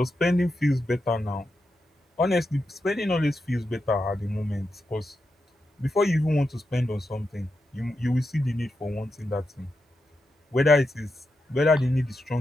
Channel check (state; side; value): normal; both; correlation 0.87